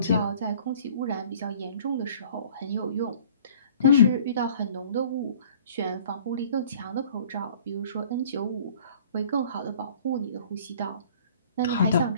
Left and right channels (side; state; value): both; inverted; correlation -0.51